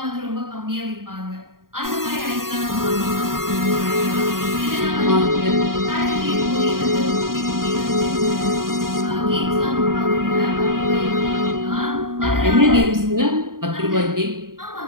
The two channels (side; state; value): left; late; 0.91 ms